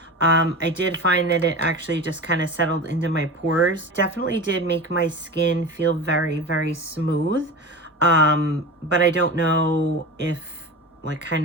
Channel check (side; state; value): both; normal; correlation 0.28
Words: I did find that it actually just kind of settled into my pores. Definitely did make my skin feel very, very smooth. But I don't know if